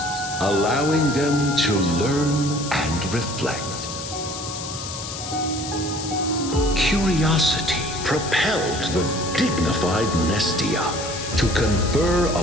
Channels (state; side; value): noise; left; hiss, 9 dB below the sound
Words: allowing them to learn and reflect. Curiosity propelled the dignified Nestia to confer